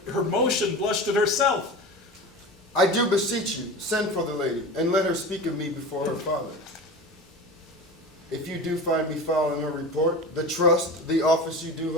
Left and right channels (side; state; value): both; normal; correlation 0.31